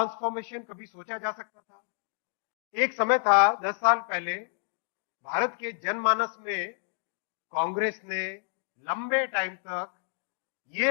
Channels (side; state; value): right; silent; digital silence